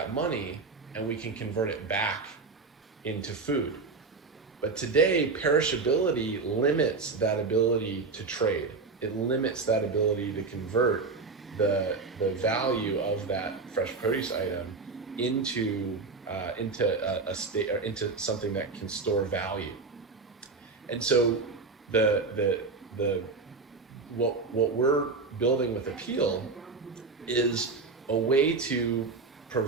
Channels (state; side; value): quieter; left; 4.2 dB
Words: money and we can convert it back into food. But today, perishability limits that ability to trade. It limits that ability to convert the value of that fresh produce item into a state, or into something that can store value. And so the what we're building with Apeel is a way to